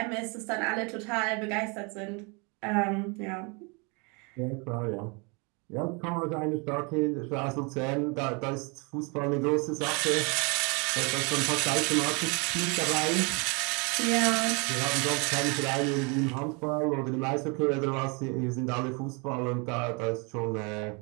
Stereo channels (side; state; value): left; quieter; 31.8 dB